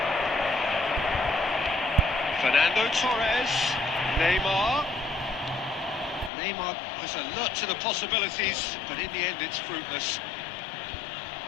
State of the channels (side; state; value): right; drops out; at 6.3 s